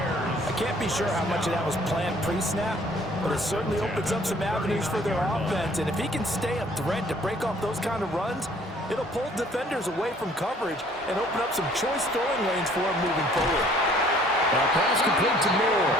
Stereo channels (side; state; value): both; normal; correlation 0.57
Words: can't be sure how much of that was planned pre-snap, but it certainly opens up some avenues for their offense. And if he can stay a threat to break off those kind of runs, it'll pull defenders away from coverage and open up some choice throwing lanes for him moving forward. Now pass complete to Moore.